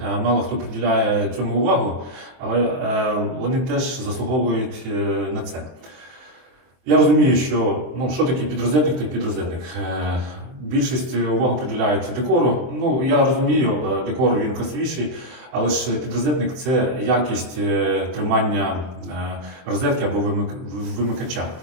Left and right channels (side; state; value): left; late; 23 ms